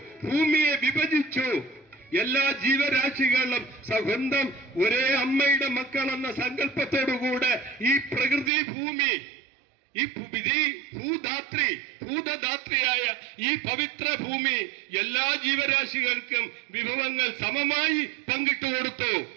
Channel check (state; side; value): drops out; left; at 8.5 s